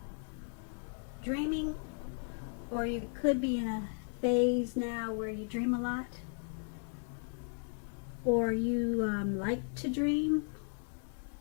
dreaming, or you could be in a phase now where you dream a lot, or you like to dream.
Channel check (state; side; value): silent; right; 54 dB below the other